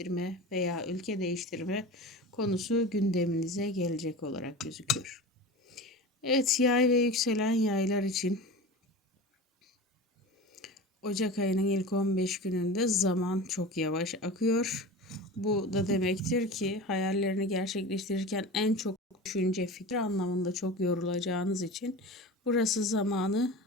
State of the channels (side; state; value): both; normal; correlation 0.32